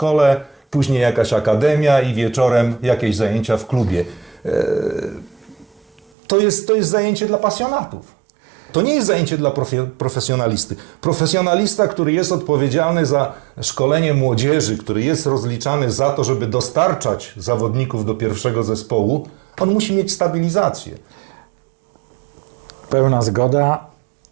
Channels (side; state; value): left; drops out; at 6.1 s